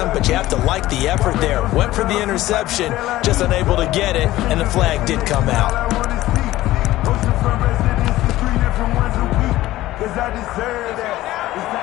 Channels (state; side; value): quieter; right; 16.0 dB